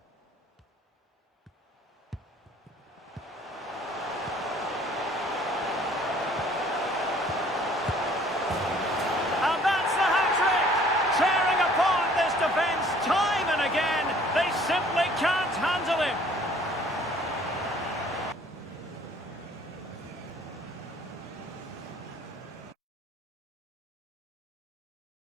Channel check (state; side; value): normal; both; correlation 0.56